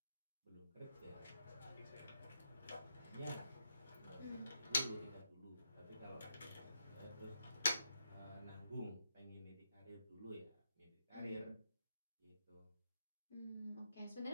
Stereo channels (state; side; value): inverted; both; correlation -0.81